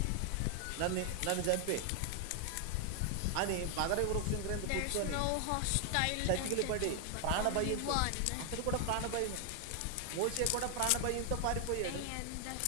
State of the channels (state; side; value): different; both; correlation 0.00